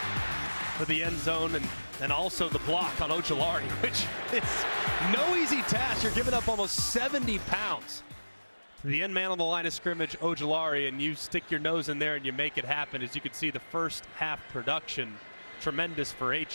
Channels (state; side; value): inverted; both; correlation -1.00